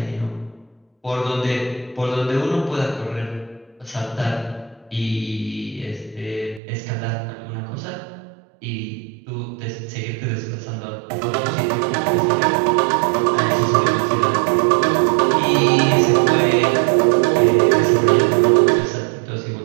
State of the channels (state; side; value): drops out; left; at 6.6 s